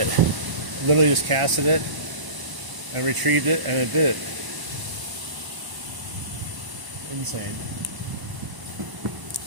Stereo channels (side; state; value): left; late; 1.0 ms